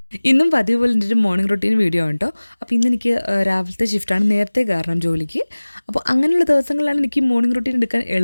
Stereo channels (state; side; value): inverted; both; correlation -1.00